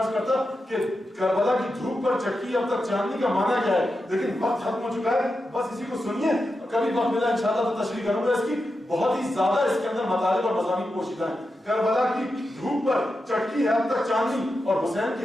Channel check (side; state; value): both; normal; correlation 0.89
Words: کرتا کہ کربلا کی دھوپ پر چٹکی اب تک چاندنی کا معنی کیا ہے, لیکن وقت ختم ہو چکا ہے. بس اسی کو سنیے, کبھی وقت ملا انشاءاللہ تو تشریح کروں گا اس کی. بہت ہی زیادہ اس کے اندر مطالب اور مضامین پوشیدہ ہیں. کربلا کی دھوپ پر چٹکی ہے اب تک چاندنی, اور حسین